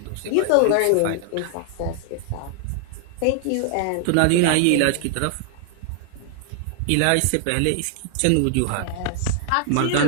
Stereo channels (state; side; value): different; both; correlation -0.01